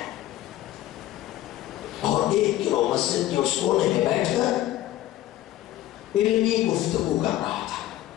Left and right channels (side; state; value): right; quieter; 14.3 dB